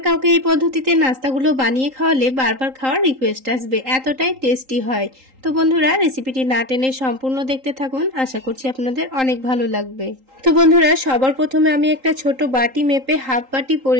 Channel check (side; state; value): left; late; 3.8 ms